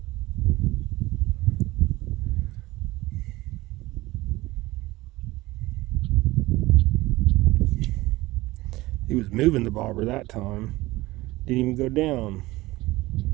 He was moving the bobber that time. Didn't even go down.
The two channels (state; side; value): quieter; left; 19.2 dB